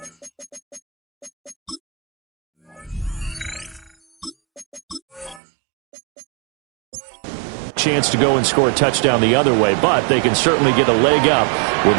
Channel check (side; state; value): left; drops out; at 5.4 s